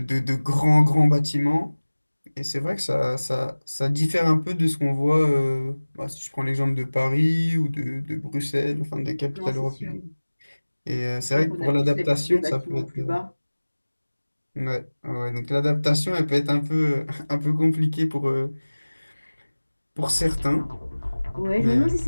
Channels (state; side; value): inverted; both; correlation -1.00